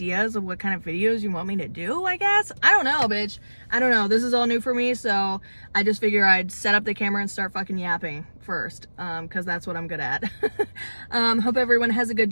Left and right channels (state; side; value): inverted; both; correlation -1.00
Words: of what kind of videos you want me to do, I guess. I don't know, bitch. I don't know. This is all new for me. So I just figure I'd set up the camera and start fucking yapping first. Cause that's what I'm good at. Hope everyone has a good